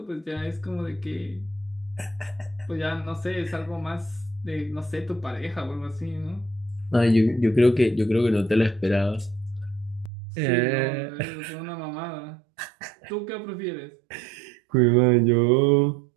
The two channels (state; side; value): drops out; left; at 10.1 s